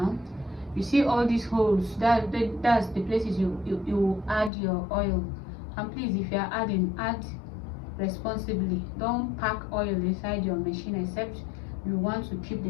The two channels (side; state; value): right; drops out; at 4.5 s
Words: you see all these holes, that's the places you add your oil. And please, if you are adding, add responsibly. Don't pack oil inside your machine except you want to keep the